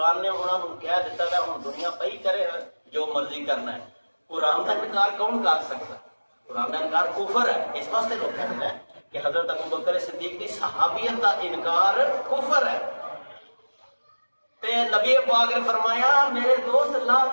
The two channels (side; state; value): both; inverted; correlation -1.00